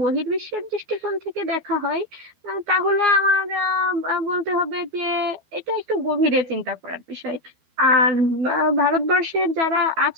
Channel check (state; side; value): late; left; 12 ms